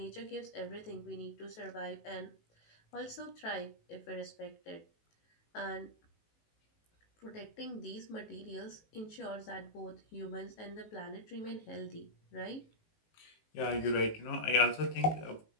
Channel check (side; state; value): right; late; 19 ms